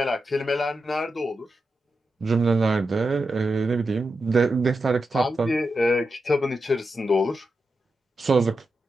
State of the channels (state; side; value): normal; both; correlation 0.88